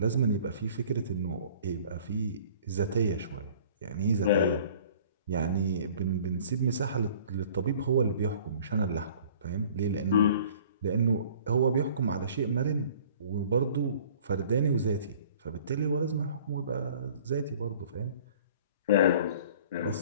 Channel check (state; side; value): inverted; both; correlation -0.50